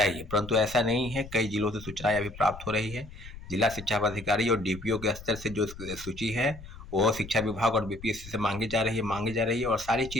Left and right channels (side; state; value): left; noise; rumble, 15 dB below the sound